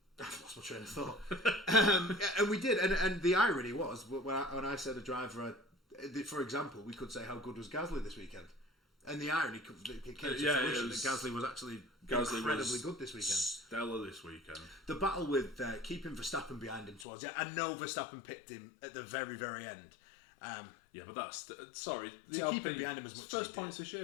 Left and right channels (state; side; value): drops out; right; at 17.1 s